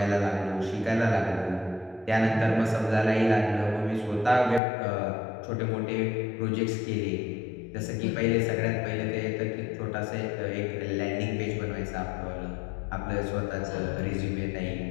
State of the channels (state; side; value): drops out; right; at 4.6 s